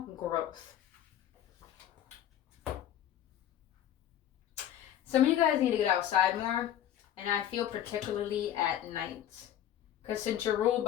growth. Some of you guys need to get outside more, and I feel particularly at night. Because since you're ruled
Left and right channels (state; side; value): quieter; right; 11.2 dB